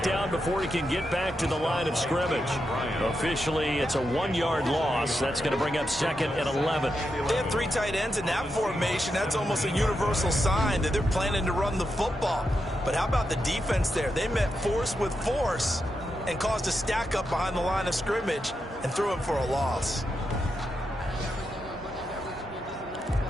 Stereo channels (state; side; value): normal; both; correlation 0.86